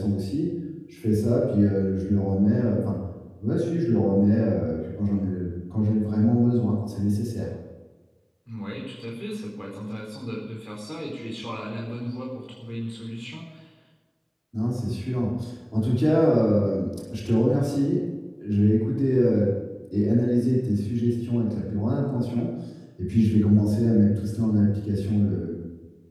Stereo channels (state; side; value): identical; both; correlation 1.00